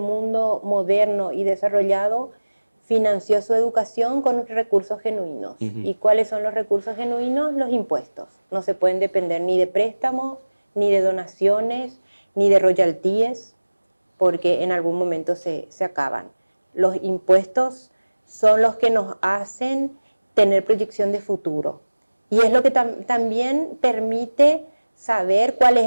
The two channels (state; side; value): inverted; both; correlation -1.00